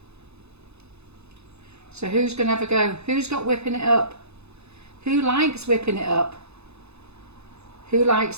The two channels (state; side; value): late; left; 0.80 ms